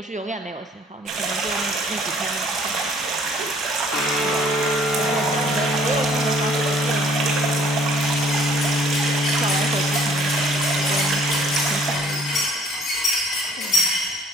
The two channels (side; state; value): both; normal; correlation 0.58